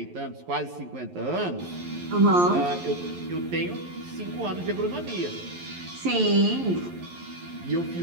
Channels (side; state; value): left; late; 11 ms